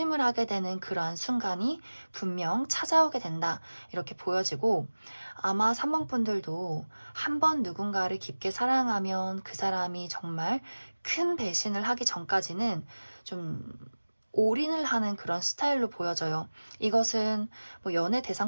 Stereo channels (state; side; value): inverted; both; correlation -1.00